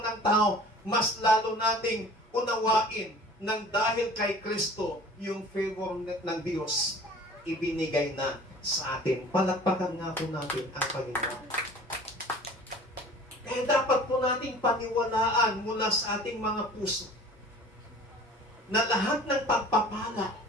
tao, mas lalo nating unawain nang dahil kay Kristo, yung favor ng Diyos, ibinigay na sa atin. Palakpakan nga po natin ang Panginoon. Kaya dapat po nating paniwalaan mula sa ating mga puso na lahat ng pagpapala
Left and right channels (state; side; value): normal; both; correlation 0.46